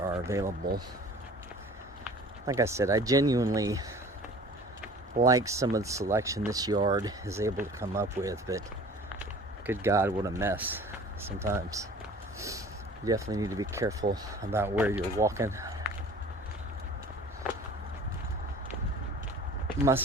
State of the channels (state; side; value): normal; both; correlation 0.46